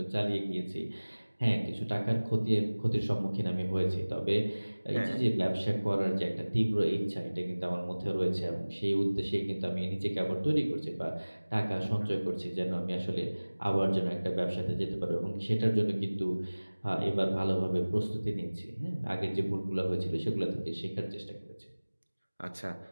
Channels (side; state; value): both; inverted; correlation -1.00